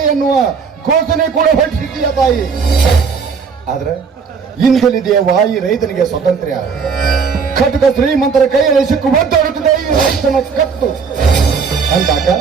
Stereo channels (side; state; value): left; quieter; 5.6 dB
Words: ಎನ್ನುವ ಘೋಷಣೆ ಕೂಡ ಹೊರಟಿದ್ದೀಯ ತಾಯಿ. ಆದ್ರೆ ಇಂದಲಿದೆಯವ್ವ ಈ ರೈತನಿಗೆ ಸ್ವಾತಂತ್ರ್ಯ. ಖಡ್ಗ ಶ್ರೀಮಂತರ ಕೈಯಲ್ಲಿ ಸಿಕ್ಕು ಒದ್ದಾಡುತ್ತಿದೆ ಈ ರೈತನ ಕತ್ತು ಅಂದಾಗ